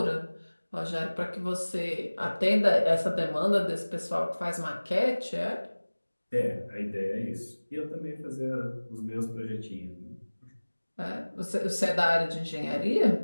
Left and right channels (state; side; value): inverted; both; correlation -1.00